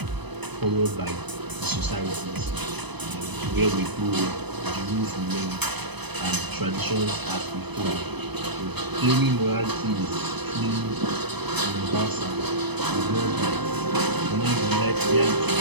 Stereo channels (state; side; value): late; left; 0.99 ms